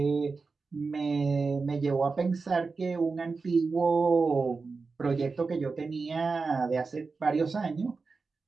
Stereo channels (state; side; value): quieter; left; 4.3 dB